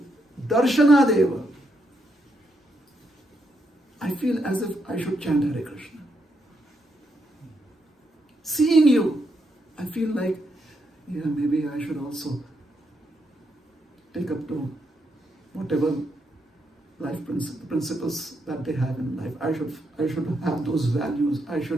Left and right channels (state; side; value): normal; both; correlation 0.79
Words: darshana deva. I feel as if I should chant Hare Krishna. Seeing you, I feel like, maybe I should also take up to whatever life principles that they have in life. I should have those values. I